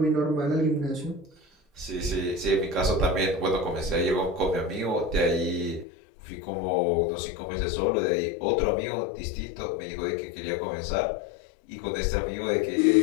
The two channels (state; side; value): drops out; right; at 5.9 s